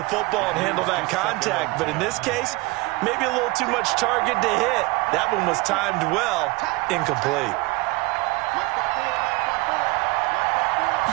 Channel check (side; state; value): left; quieter; 23.6 dB